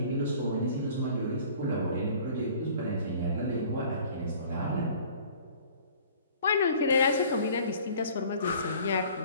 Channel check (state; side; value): inverted; both; correlation -0.50